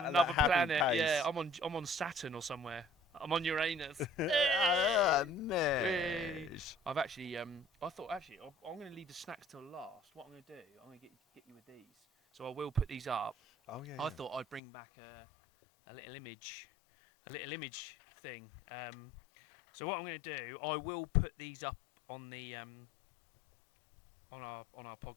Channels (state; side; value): drops out; right; at 14.6 s